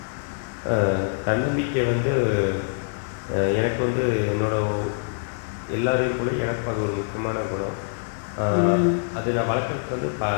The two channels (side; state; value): right; silent; digital silence